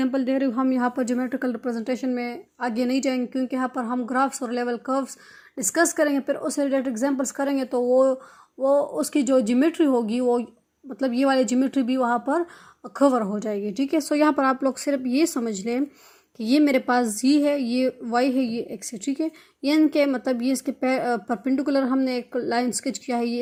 दे रही हूँ। हम यहाँ पर ज्योमेट्रिकल रिप्रेजेंटेशन में आगे नहीं जाएंगे, क्योंकि यहाँ पर हम ग्राफ्स और लेवल कर्व्स डिस्कस करेंगे, फिर उससे रिलेटेड एग्जांपल्स करेंगे, तो वो उसकी जो ज्योमेट्री होगी वो मतलब ये वाली ज्योमेट्री भी वहाँ पर कवर हो जाएगी। ठीक है, सो यहाँ पर आप लोग सिर्फ ये समझ लें कि ये मेरे पास जी है, ये वाई है, ये एक्स है। ठीक है, ये इनके मतलब ये इसके परपेंडिकुलर हमने एक लाइन स्केच किया है, ये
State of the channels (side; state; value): both; identical; correlation 1.00